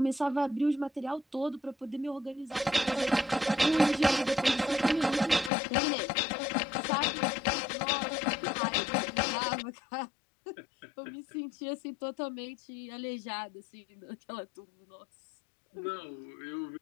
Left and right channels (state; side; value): drops out; right; at 5.5 s